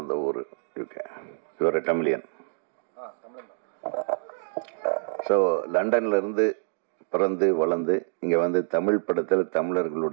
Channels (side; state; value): left; silent; digital silence